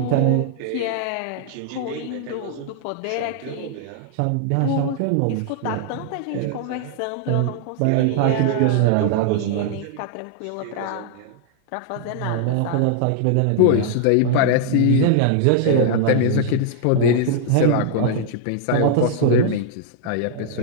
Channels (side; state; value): both; different; correlation -0.01